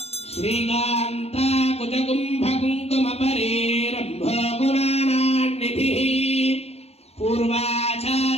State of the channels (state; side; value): late; right; 0.30 ms